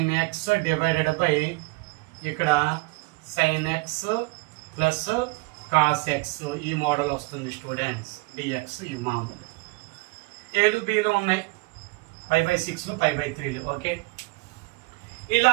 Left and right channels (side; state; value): left; quieter; 26.8 dB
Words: x divided by ఇక్కడ sin x plus cos x ఈ మోడల్ వస్తుంది స్టూడెంట్స్. dx ఈ మామూలు ఏలు బీలు ఉన్నాయి, π by 6 π by 3. ఓకే, ఇలా